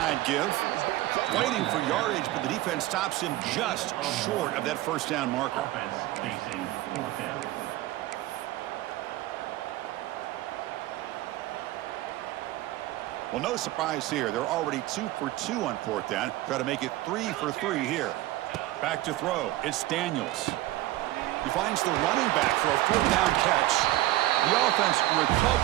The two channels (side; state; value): left; quieter; 16.5 dB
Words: give. Fighting for yardage, but the defense stops him just short of that 1st down marker. Well, no surprise here. They're already 2 for 2 on 4th down. Try to make it 3 for 3 here. Back to throw. It's Daniels. He finds the running back for a 4th down catch. The offense